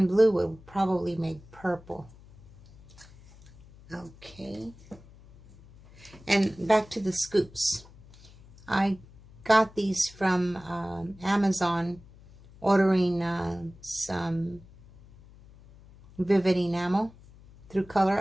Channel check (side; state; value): left; noise; hum, 23 dB below the sound